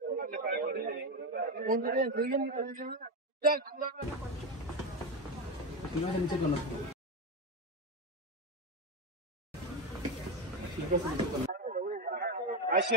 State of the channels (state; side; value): normal; both; correlation 0.14